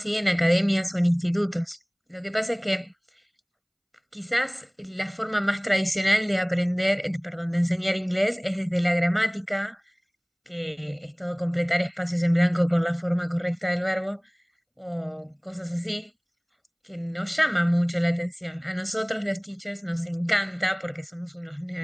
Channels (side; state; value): both; identical; correlation 1.00